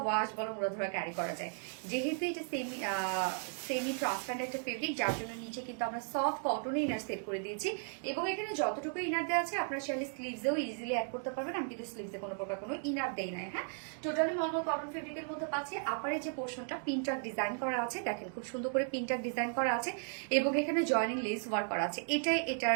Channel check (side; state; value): left; silent; 54 dB below the other